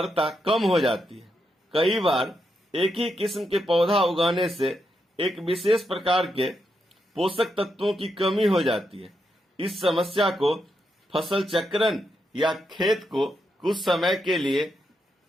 कम हो जाती है। कई बार एक ही किस्म के पौधा उगाने से एक विशेष प्रकार के पोषक तत्वों की कमी हो जाती है। इस समस्या को फसल चक्रण या खेत को कुछ समय के लिए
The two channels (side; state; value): both; normal; correlation 0.83